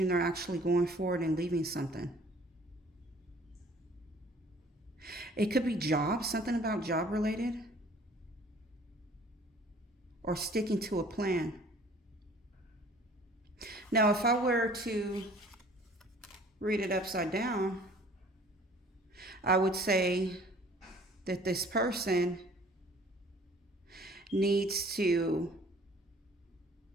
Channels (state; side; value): normal; both; correlation 0.52